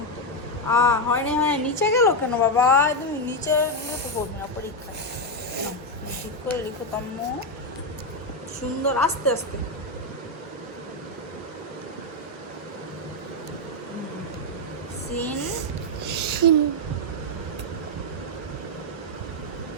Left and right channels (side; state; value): both; normal; correlation 0.03